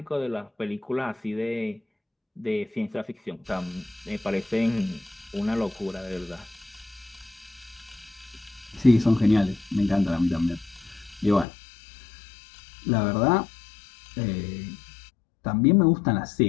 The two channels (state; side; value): drops out; right; at 11.5 s